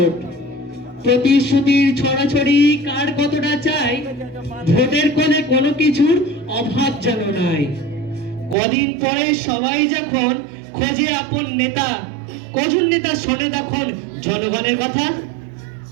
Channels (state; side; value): drops out; left; at 8.6 s